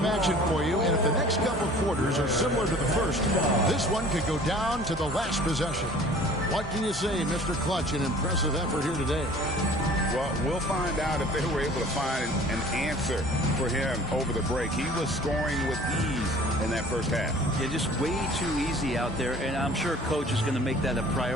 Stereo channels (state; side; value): normal; both; correlation 0.48